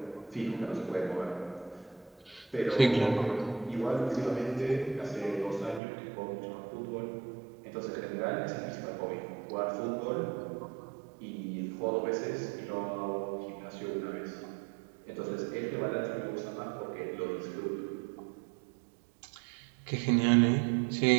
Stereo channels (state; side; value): drops out; left; at 5.8 s